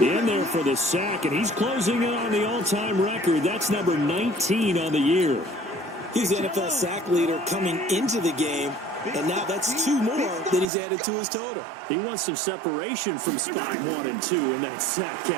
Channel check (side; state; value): left; drops out; at 10.7 s